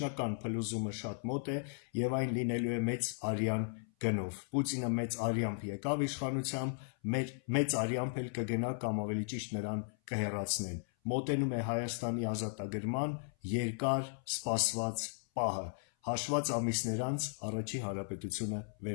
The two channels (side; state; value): right; silent; 54 dB below the other